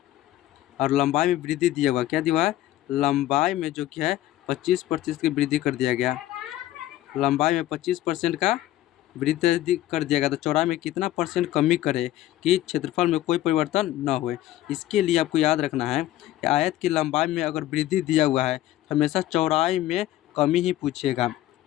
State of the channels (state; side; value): quieter; right; 14.5 dB